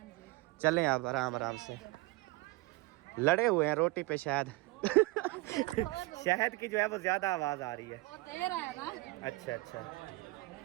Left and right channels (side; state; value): left; quieter; 21.8 dB